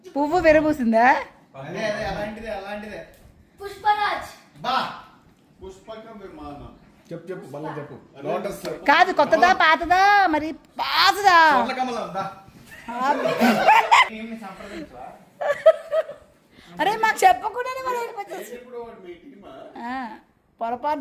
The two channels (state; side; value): identical; both; correlation 1.00